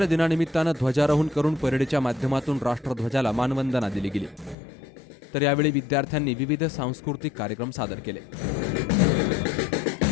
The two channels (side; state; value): right; drops out; at 4.5 s